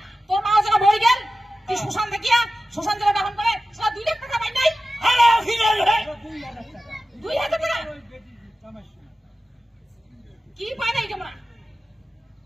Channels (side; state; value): both; normal; correlation 0.94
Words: তোর মা যারা মরে গেল, তুই শ্মশান দেখিয়া শ্মশান যারা দাহন করে, সেটা 2 লাখ টাকা পাই নাই? আরে ওখানে রে। 2,000 টাকা কি পাই নাই তোমরা?